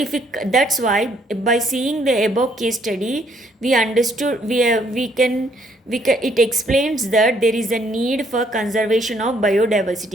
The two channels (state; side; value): normal; both; correlation 0.68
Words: we, that's why by seeing the above case study we understood, we can it explains that there is a need for conservation of